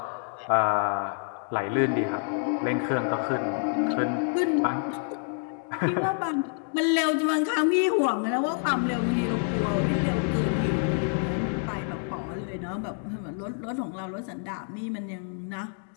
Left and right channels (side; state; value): right; silent; 57 dB below the other